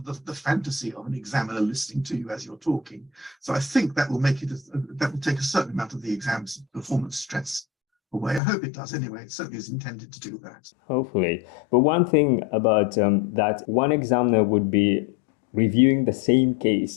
fantasy of an examiner listening to you as you're talking. So I think that will make it that will take a certain amount of the exam's performance stress away. I hope it does anyway. It certainly is intended to do that. Hopefully. But one thing about that, one examiner would be reviewing the same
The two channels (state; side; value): drops out; right; at 8.4 s